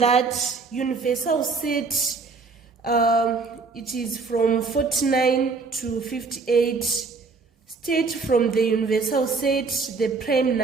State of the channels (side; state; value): left; quieter; 4.4 dB